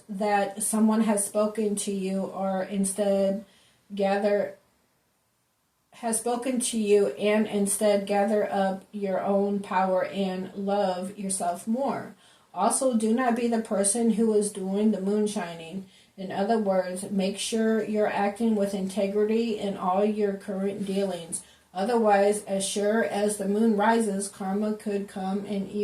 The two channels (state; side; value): identical; both; correlation 1.00